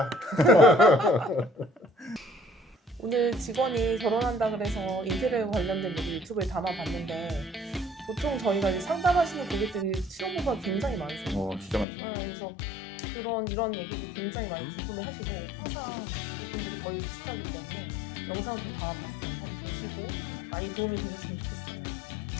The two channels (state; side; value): drops out; right; at 11.9 s